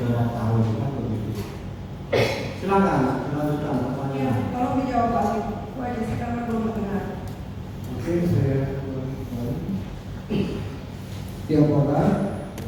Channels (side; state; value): both; identical; correlation 1.00